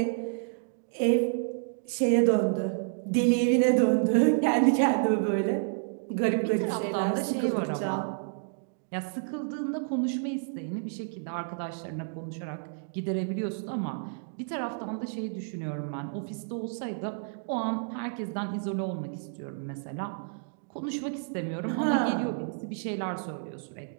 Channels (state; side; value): silent; left; digital silence